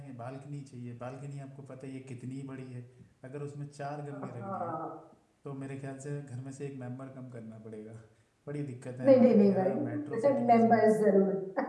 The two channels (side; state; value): both; identical; correlation 1.00